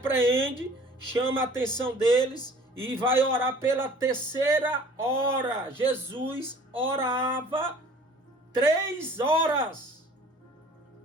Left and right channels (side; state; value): both; normal; correlation 0.50